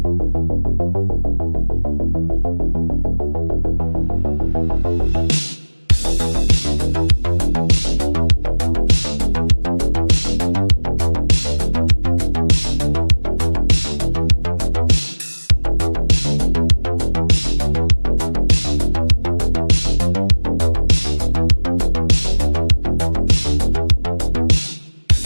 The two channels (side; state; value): both; inverted; correlation -1.00